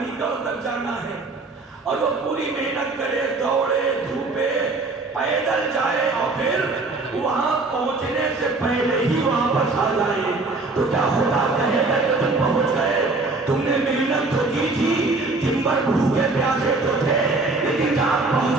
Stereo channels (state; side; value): quieter; left; 3.4 dB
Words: گڑھ تک جانا ہے اور وہ پوری محنت کرے، دوڑے دھوپے، پیدل جائے اور پھر وہاں پہنچنے سے پہلے ہی واپس آ جائے، تو کیا خدا کہے گا کہ تم پہنچ گئے؟ تم نے محنت تو کی تھی، دن بھر بھوکے پیاسے تو تھے، لیکن جہاں